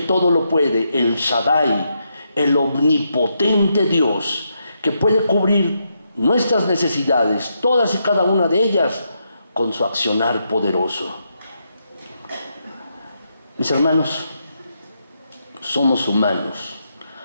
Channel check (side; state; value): both; inverted; correlation -0.81